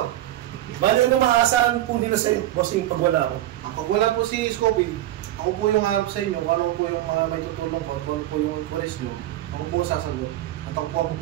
Bali ano maaasahan po nila sa iyo, bossing, pag wala ako? Pag wala po si Scopy, ako po yung harap sa inyo, kung ano po yung mga may tutulong ko, kung ano po yung inquiries nyo, ako po sasagot. At ako po ang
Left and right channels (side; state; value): left; quieter; 14.3 dB